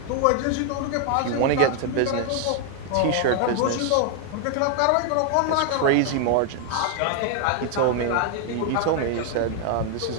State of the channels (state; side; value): different; both; correlation 0.00